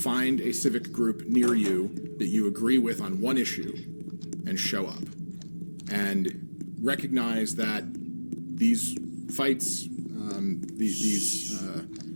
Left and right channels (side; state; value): both; inverted; correlation -1.00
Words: a civic group near you that you agree with on one issue and show up. And recognize that these fights, the